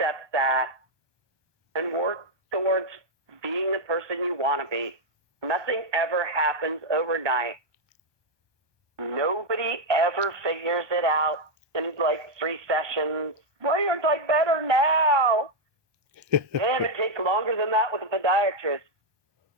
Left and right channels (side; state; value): left; late; 1.2 ms